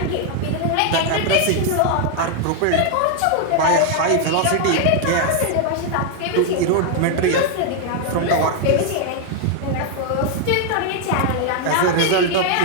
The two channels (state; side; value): different; both; correlation 0.00